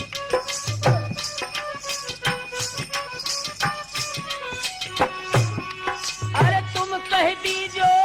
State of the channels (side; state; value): both; identical; correlation 1.00